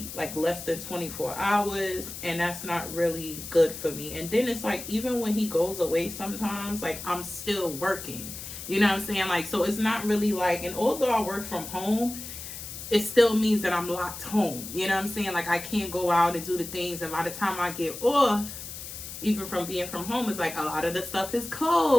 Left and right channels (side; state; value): left; noise; hiss, 10 dB below the sound